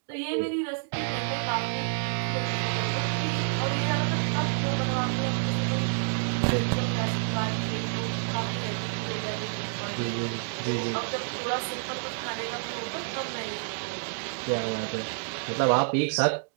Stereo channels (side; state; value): left; silent; digital silence